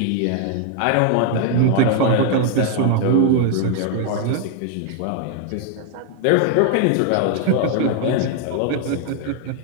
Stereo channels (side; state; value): both; different; correlation 0.00